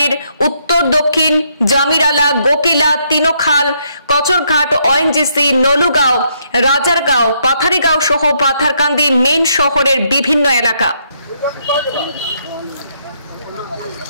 উত্তর, দক্ষিণ, জামিরালা, গোকিলা, তিনোখাল, কচরঘাট, ওএনজিসি, নলুগাঁও, রাজারগাঁও, পাথারিগাঁও সহ পাথারকান্দি মেইন শহরের বিভিন্ন এলাকা।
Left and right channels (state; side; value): inverted; both; correlation -0.74